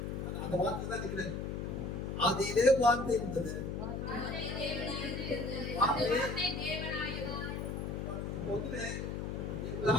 அந்த வார்த்தை தான் இருக்கிறேன். அதிலே வார்த்தை இருந்தது.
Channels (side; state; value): left; noise; hum, 3 dB below the sound